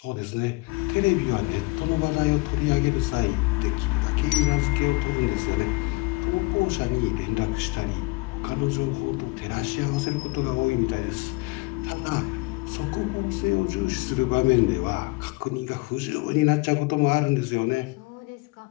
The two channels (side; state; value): right; quieter; 25.0 dB